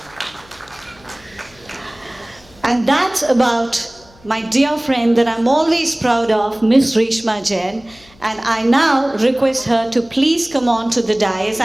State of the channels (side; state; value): left; noise; hum, 27 dB below the sound